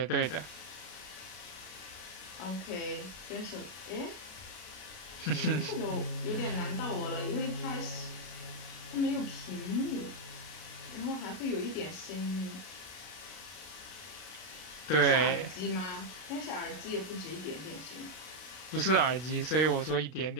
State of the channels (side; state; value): right; late; 33 ms